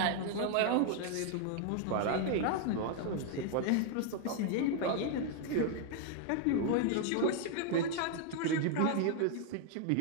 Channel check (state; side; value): different; both; correlation 0.00